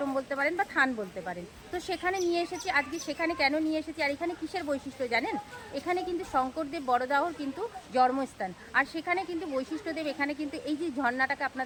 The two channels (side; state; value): both; identical; correlation 1.00